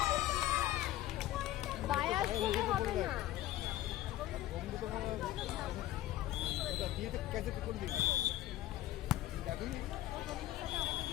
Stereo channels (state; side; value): quieter; right; 14.4 dB